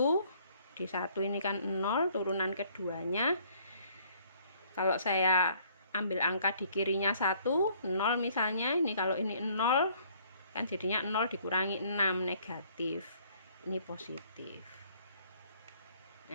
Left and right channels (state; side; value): inverted; both; correlation -0.60